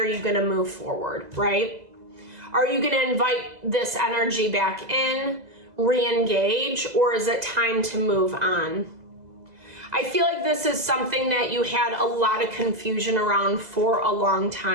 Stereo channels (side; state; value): left; late; 2.0 ms